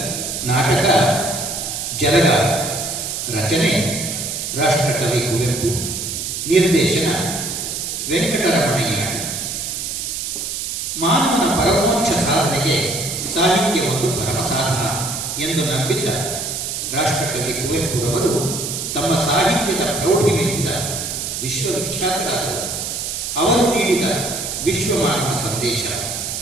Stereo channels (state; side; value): noise; right; hiss, 4 dB below the sound